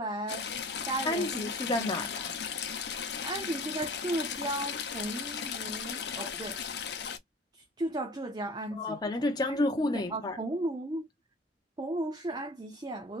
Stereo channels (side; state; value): both; normal; correlation 0.41